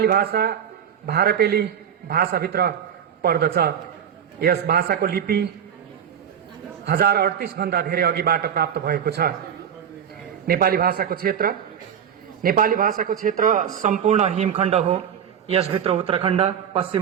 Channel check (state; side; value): quieter; left; 8.6 dB